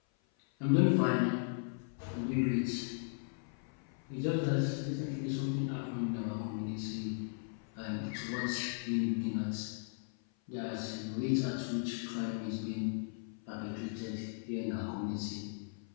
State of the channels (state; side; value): silent; right; 53 dB below the other